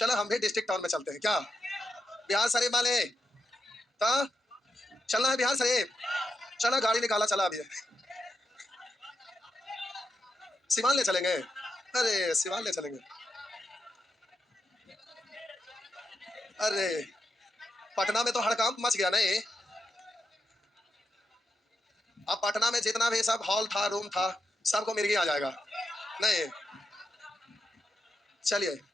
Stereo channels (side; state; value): both; normal; correlation 0.85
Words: हम भी डिस्ट्रिक्ट टाउन में चलते हैं क्या, बिहार शरीफ वाले। तो चलना है बिहार शरीफ, चलो गाड़ी निकाला, चला अभी सिवान ले चलेंगे। अरे सिवान ले चलेंगे। अरे पटना में तो हड़कंप मच गया नहीं। अब पटना में जितना भी सब हॉल था, रूम था, सबको मिर्गी आ जाएगा नहीं। चलिए